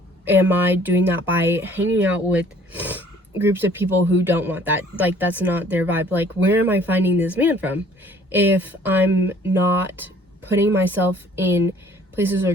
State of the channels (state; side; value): normal; both; correlation 0.56